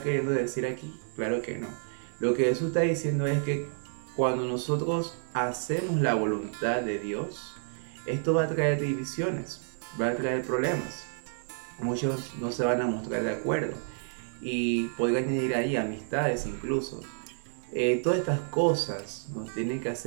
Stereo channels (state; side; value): silent; left; digital silence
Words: queriendo decir aquí? Claro que no. Lo que Jesús está diciendo es que cuando nosotros hacemos la voluntad de Dios, esto va a traer divisiones, va a traer problemas. Muchos no se van a mostrar de acuerdo y podría añadir ahí amistades incluso. Todas estas cosas nos tienen que